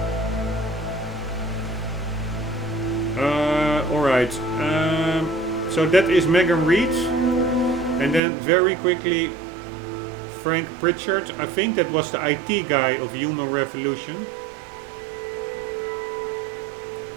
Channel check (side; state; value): left; drops out; at 8.2 s